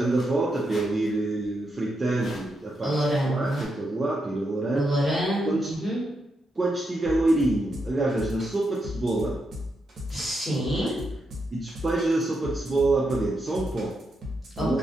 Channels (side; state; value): both; normal; correlation 0.83